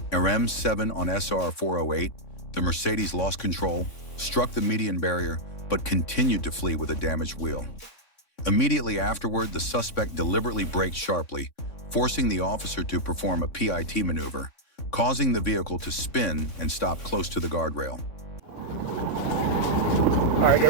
RM7 on SR 408, the Mercedes lost control, struck the median barrier, but continued to flee with a damaged wheel. Immediately afterward, the suspect deliberately braked sharply, forcing the officer to perform a PIT maneuver, causing the vehicle to spin and stop close to the guardrail. All right, get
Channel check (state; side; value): late; right; 3.6 ms